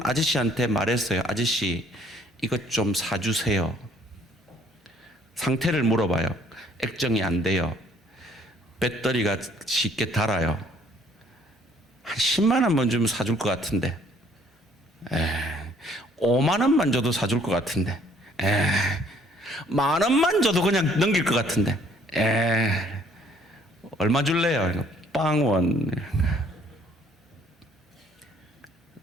아저씨한테 말했어요. 아저씨, 이것 좀 사주세요. 상태를 물어봐요. 액정이 안 돼요. 배터리가 쉽게 닳아요. 한 10만 원만 주면 사줄 것 같은데, 5만 원만 줘도 사줄 것 같은데, 만 원만 줘도 그냥 넘길 것 같은데, 얼마 줄래요? 빵원.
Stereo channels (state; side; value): normal; both; correlation 0.62